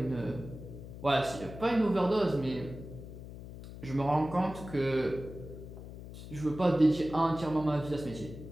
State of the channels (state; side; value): noise; left; hum, 13 dB below the sound